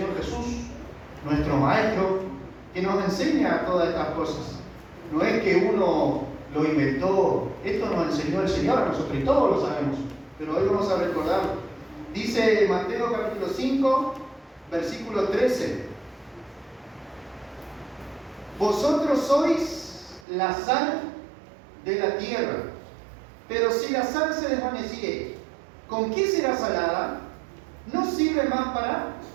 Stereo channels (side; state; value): left; drops out; at 20.2 s